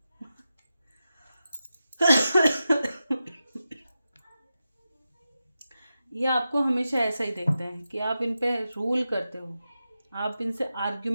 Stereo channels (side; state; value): both; inverted; correlation -0.91